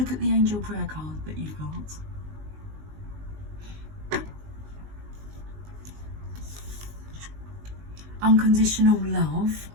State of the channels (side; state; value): left; late; 19 ms